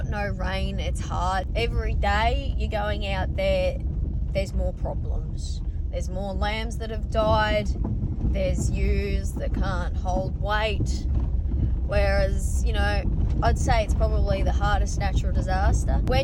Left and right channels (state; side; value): identical; both; correlation 1.00